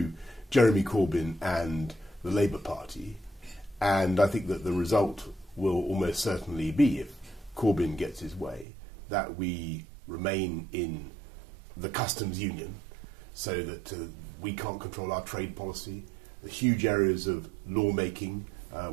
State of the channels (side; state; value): left; drops out; at 8.7 s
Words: Jeremy Corbyn and the Labour Party, and I think that the result will almost certainly be, if Corbyn gets his way, that we remain in the customs union, so that we can't control our trade policy. The huge areas of lawmaking